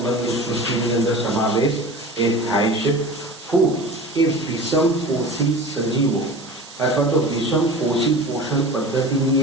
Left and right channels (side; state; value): right; noise; hiss, 18 dB below the sound